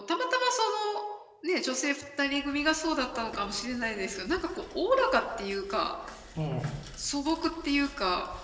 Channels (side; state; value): both; identical; correlation 1.00